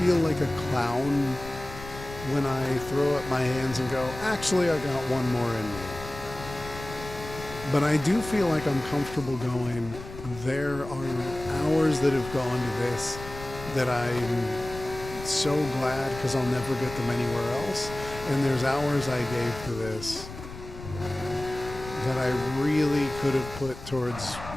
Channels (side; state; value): left; noise; rumble, 13 dB below the sound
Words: like a clown when I throw up my hands and go, actually I got one more in me. But I do feel like I'm comfortable going, there are hours that have gone to this that I'm so glad because I'll never get them anywhere else. And there's hours I gave to this that I really could have put towards